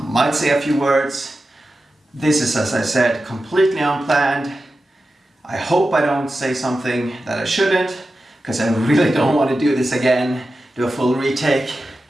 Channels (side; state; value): both; normal; correlation 0.92